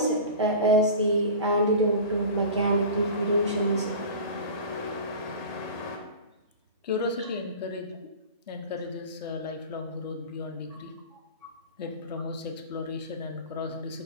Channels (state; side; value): inverted; both; correlation -0.33